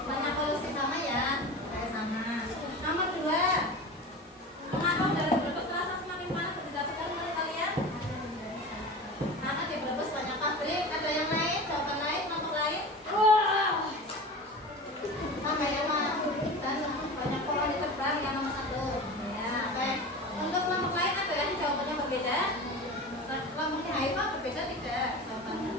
Banyak polusi sama ya? Kayak sama. Nomor 2, mengapa udara di Brebes terasa semakin panas? Dijelaskan menurut kalian? Karena di Brebes banyak pabrik. Ada yang lain? Jawaban lain? Nomor lain? Sama ya Mas. Dan banyak pohon ditebang yang nomor 1. Ya, oke. Untuk kelompok lain ada yang jawabannya berbeda? Kelompoknya Haifa berbeda tidak jawabannya?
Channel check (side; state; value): both; normal; correlation 0.32